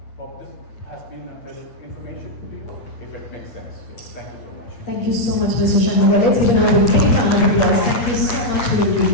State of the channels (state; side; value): late; right; 8.5 ms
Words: Hope this has been a little information to you, if it makes sense. Thank you so much. Thank you so much, Mr. Shanmugha. Let's give another big round of applause. Thank you so much for the